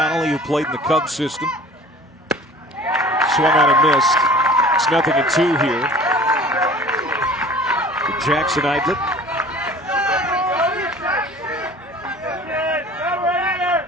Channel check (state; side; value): normal; both; correlation 0.45